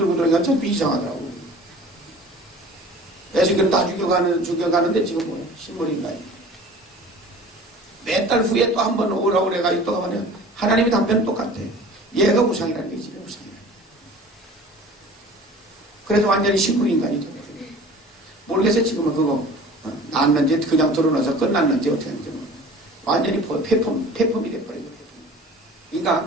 돌아다니니까 참 이상하더라고. 애새끼를 다 죽여가는데 지금 뭐야? 식물인가요? 몇 달 후에 또 한 번 오라고 그래가지고 또 하면 하나님의 답변은 똑같아. 얘가 우상이라는 게 지금 우상이야. 그래서 완전히 식물인간이 되거든. 모르겠어요. 지금은 그거 낳았는지 그냥 들어놔서 끝났는지 어떻게 하는지 완전히 폐품이 돼버리고.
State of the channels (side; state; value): both; normal; correlation 0.43